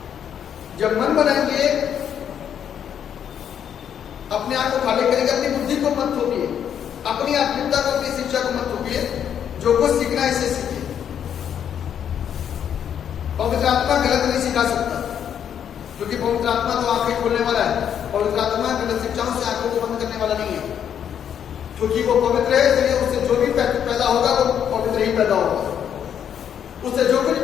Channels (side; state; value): right; quieter; 8.9 dB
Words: जब मन बनाएंगे, अपने आप को खाली करेंगे, अपनी बुद्धि को मत थोपिए, अपनी आत्मिकता को, अपनी शिक्षा को मत थोपिए। जो कुछ सीखना है इसे सीखिए। पवित्र आत्मा गलत नहीं सिखा सकता, क्योंकि पवित्र आत्मा तो आंखें खोलने वाला है। पवित्र आत्मा गलत शिक्षाओं से आंखों को बंद करने वाला नहीं है, क्योंकि वो पवित्र है। इसलिए उससे जो भी पैदा होगा वो पवित्र ही पैदा होगा। उससे जो कुछ